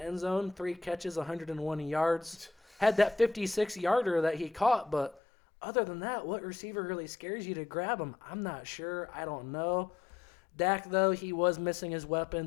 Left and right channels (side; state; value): right; drops out; at 5.2 s